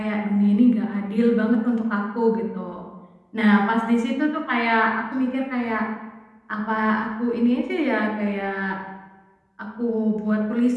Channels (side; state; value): both; identical; correlation 1.00